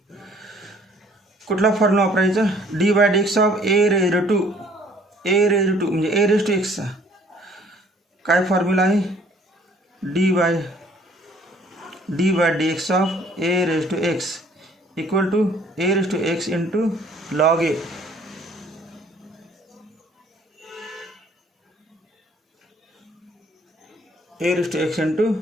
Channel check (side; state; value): both; normal; correlation 0.58